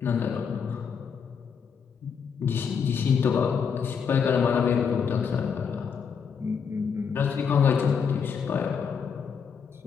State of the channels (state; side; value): quieter; right; 6.5 dB